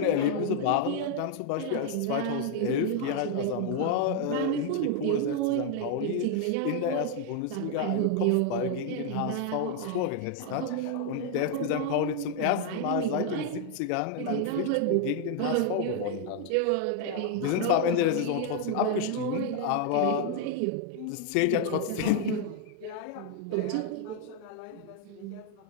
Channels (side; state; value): both; different; correlation 0.00